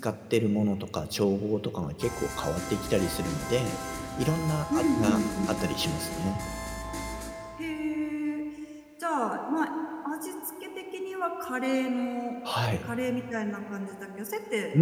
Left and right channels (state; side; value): identical; both; correlation 1.00